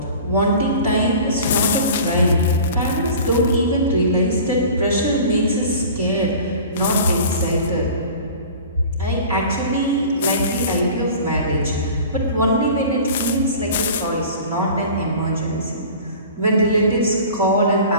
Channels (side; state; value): both; inverted; correlation -0.41